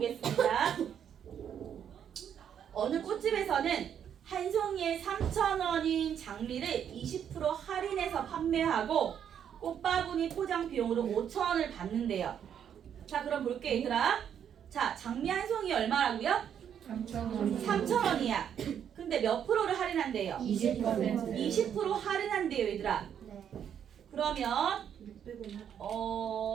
어느 꽃집에서는 한 송이에 3,000원인 장미를 20% 할인해서 판매하고 꽃바구니 포장 비용으로 5,000원을 받는데요. 자, 그럼 볼게 얘들아. 자, 장미 한 송이 얼마라고요? 3,000원이야. 근데 몇 프로를 할인한대요? 20% 할인한대요, 얘들아. 그러면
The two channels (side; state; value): left; quieter; 8.8 dB